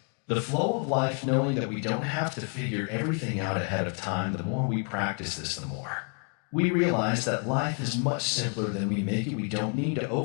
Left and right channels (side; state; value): right; quieter; 39.4 dB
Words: the flow of life, knowing that we don't have to figure everything out ahead of time. The more we practice this, the more we realize that life is much simpler than we make it. We don't need to